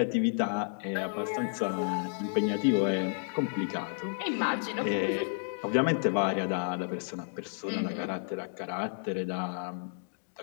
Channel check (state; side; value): silent; right; digital silence